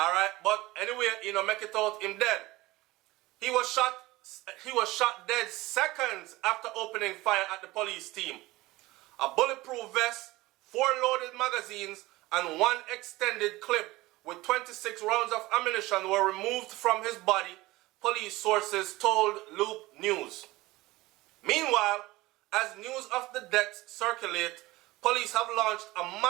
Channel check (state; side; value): quieter; left; 19.4 dB